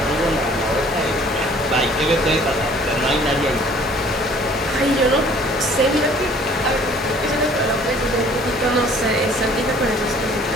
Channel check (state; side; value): normal; both; correlation 0.54